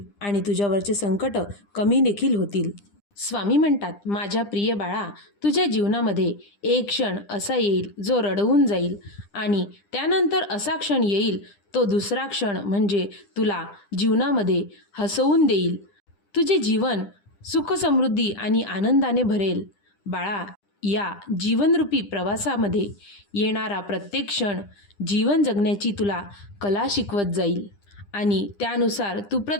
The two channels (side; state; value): right; late; 9.9 ms